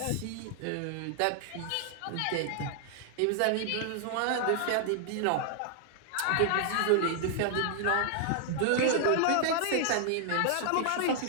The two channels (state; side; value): different; both; correlation 0.00